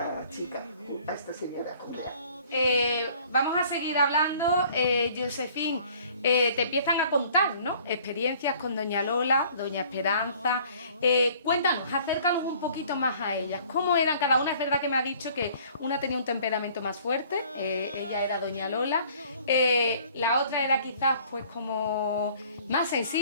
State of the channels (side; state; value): both; inverted; correlation -0.55